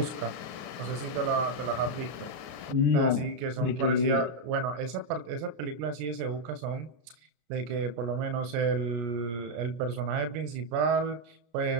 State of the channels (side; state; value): left; late; 33 ms